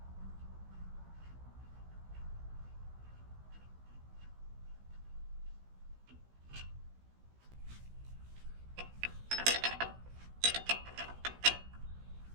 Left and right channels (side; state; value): left; late; 16 ms